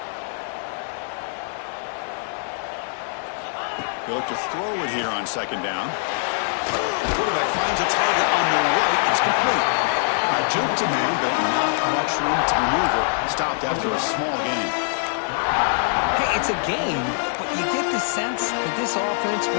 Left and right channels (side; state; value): right; silent; 61 dB below the other